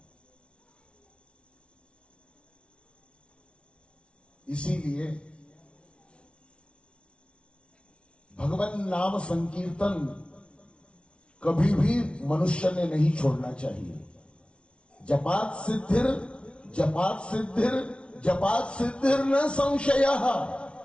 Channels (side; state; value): right; late; 0.059 ms